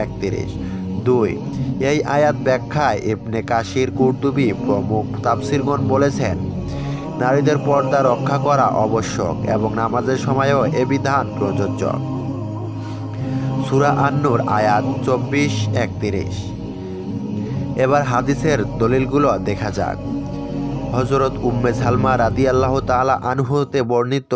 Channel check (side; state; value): both; identical; correlation 1.00